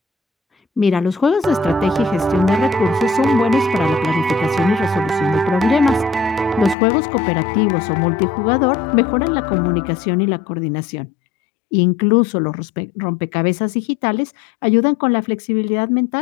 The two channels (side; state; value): right; drops out; at 6.8 s